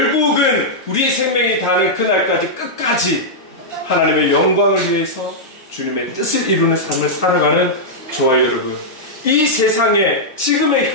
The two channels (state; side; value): normal; both; correlation -0.08